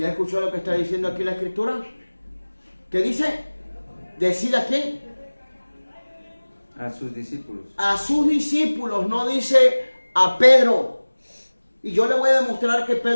escuchó lo que está diciendo aquí la escritura? ¿Qué dice? ¿Decid a quién? A sus discípulos. A sus discípulos, no dice a Pedro. Y yo le voy a demostrar que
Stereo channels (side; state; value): both; inverted; correlation -1.00